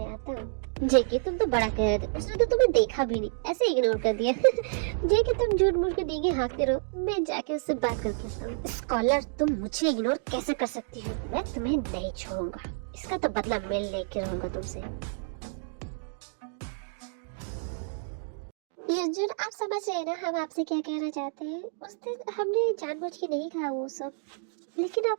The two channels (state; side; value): silent; left; digital silence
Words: आता हूँ। जेके, तुम तो बड़ा कह रहे थे, उसने तो तुम्हें देखा भी नहीं, ऐसे इग्नोर कर दिया। जेके, तुम झूठ मूठ के डींगे हाँकते रहो, मैं जाके उससे बात करके आता हूँ। स्कॉलर, तुम मुझे इग्नोर कैसे कर सकती हो? मैं तुम्हें नहीं छोड़ूंगा, इसका तो बदला मैं लेके रहूंगा तुमसे। युनजुन, आप समझ रहे हैं ना हम आपसे क्या कहना चाहते हैं? उस दिन हमने जानबूझ के नहीं कहा वो सब, लेकिन